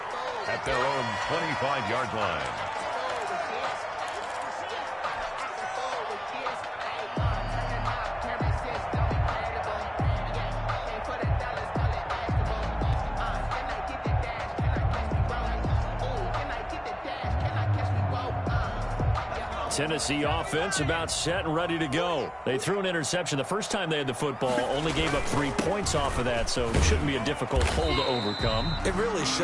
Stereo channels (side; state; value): both; identical; correlation 1.00